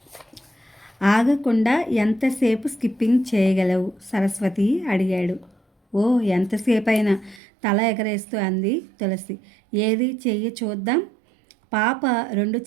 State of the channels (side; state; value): left; drops out; at 7.4 s